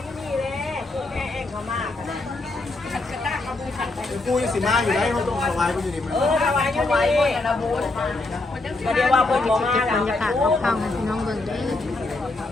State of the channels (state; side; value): quieter; right; 3.1 dB